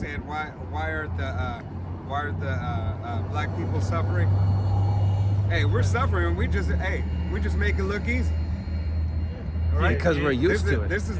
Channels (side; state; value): both; identical; correlation 1.00